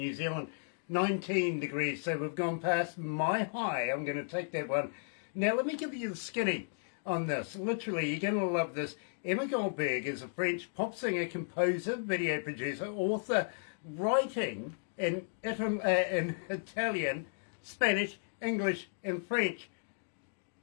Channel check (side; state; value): right; silent; digital silence